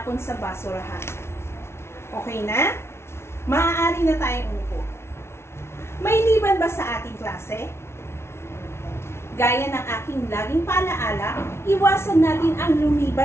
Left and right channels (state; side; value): late; right; 0.12 ms